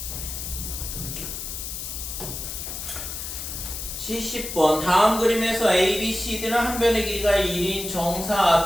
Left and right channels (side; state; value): left; noise; hiss, 7 dB below the sound